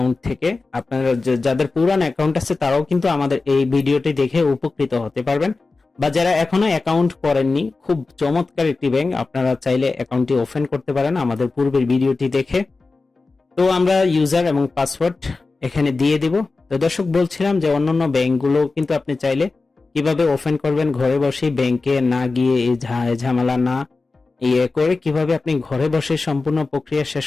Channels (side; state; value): right; quieter; 3.8 dB